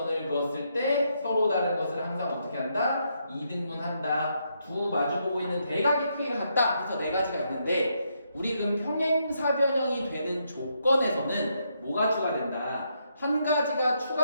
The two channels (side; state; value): both; inverted; correlation -0.77